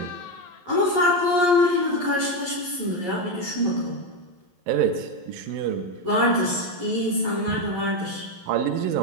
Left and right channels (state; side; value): late; left; 11 ms